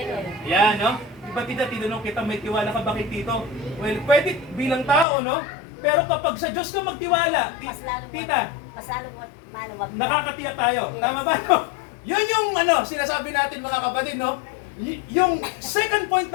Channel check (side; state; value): right; drops out; at 5.1 s